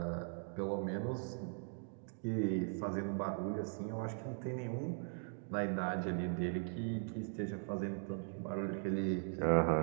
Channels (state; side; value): silent; left; 51 dB below the other